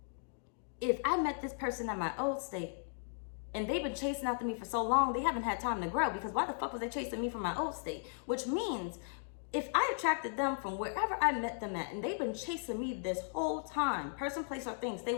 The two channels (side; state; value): right; silent; digital silence